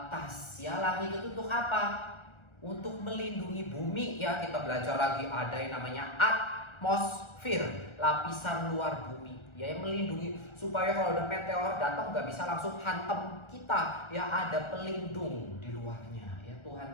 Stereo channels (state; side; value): late; right; 1.4 ms